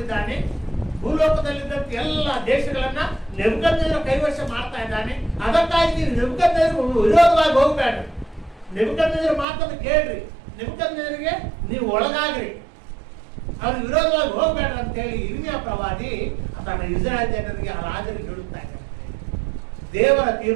ಭೂಲೋಕದಲ್ಲಿದ್ದಂತ ಎಲ್ಲ ದೇಶಗಳನ್ನ ನೆಬೂಕದ್ನೆಚ್ಚರ ಕೈವಶ ಮಾಡ್ತಾ ಇದ್ದಾನೆ. ಅದಕ್ಕಾಗಿ ನೀವು ನೆಬೂಕದ್ನೆಚ್ಚರಕ್ಕೆ ವಿರೋಧವಾಗಿ ಹೋಗ್ಬೇಡ್ರಿ, ನೆಬೂಕದ್ನೆಚ್ಚರ ಮಾತನ್ನು ಕೇಳ್ರಿ, ನೆಬೂಕದ್ನೆಚ್ಚರಿಗೆ ನೀವು ಒಳಗಾಗ್ರಿ, ಅವ್ರಿಗೆ ವಿರೋಧವಾಗಿ ಹೋಗ್ಬೇಡ್ರಿ ಅಂತ ಹೇಳಿ ಇರ್ಮಿಯಾ ಪ್ರವಾದಿ ತನ್ನ ಇಸ್ರಾಯೇಲ್ ಜನರಿಗೆ, ಆ ರಾಜರಿಗೆ ಹೇಳುತ್ತಾ ಇದ್ದಾರೆ. ದೇವರ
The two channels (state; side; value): drops out; left; at 9.5 s